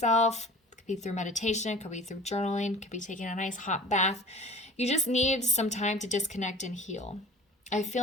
Be through meditation, could be through journaling, could be taking a nice hot bath. You just need some time to disconnect and heal. I feel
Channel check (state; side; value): normal; both; correlation 0.43